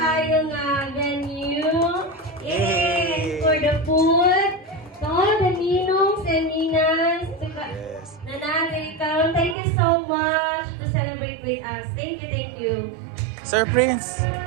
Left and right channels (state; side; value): drops out; left; at 9.6 s